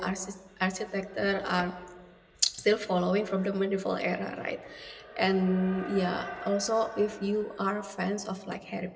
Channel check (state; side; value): identical; both; correlation 1.00